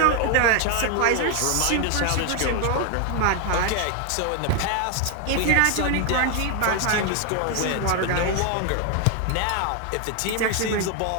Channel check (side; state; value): both; different; correlation 0.01